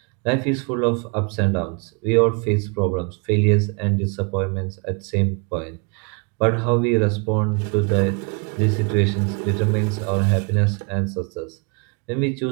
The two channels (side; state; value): left; quieter; 34.0 dB